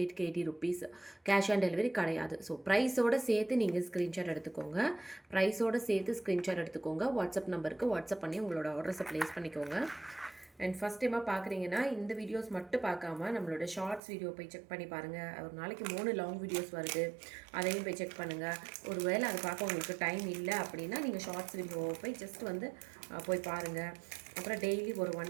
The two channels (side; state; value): left; drops out; at 14.0 s